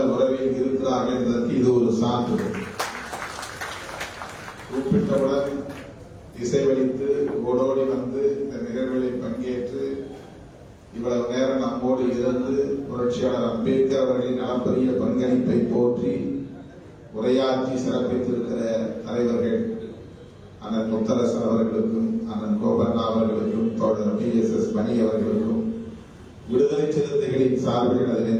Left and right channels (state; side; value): identical; both; correlation 1.00